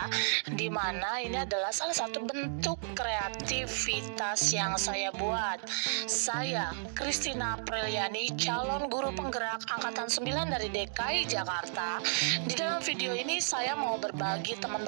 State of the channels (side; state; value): left; silent; digital silence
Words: di mana ini adalah salah satu bentuk kreativitas yang saya buat. Saya, Christina Apriliani, calon guru penggerak Angkatan 9 dari DKI Jakarta. Di dalam video ini saya mau berbagi,